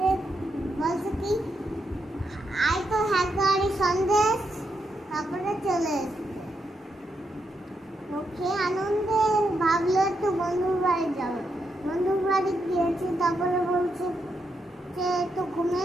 বলছে কি আয় তো হাঁড়ি সন্দেশ। তারপরে চলে এসছে ওকে আনন্দে ভাবলো একটু বন্ধুর বাড়ি যাবো। বন্ধুর বাড়ি গিয়েছি। তারপরে বলছে যে একটু ঘুমিয়ে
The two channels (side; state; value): both; normal; correlation 0.81